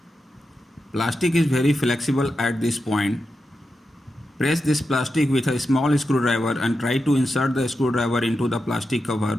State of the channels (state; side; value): normal; both; correlation 0.89